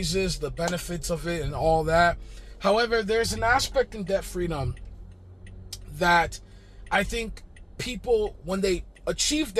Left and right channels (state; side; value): identical; both; correlation 1.00